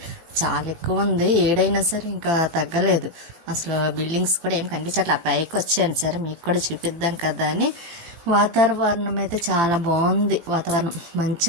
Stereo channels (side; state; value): left; late; 18 ms